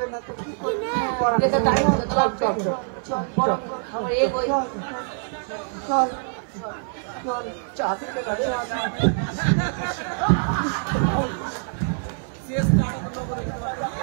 না তো কি করবি এটা তাই তো লাগবে চল আমার এই ওই চল চল চা দিতে না রে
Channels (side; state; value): left; silent; 58 dB below the other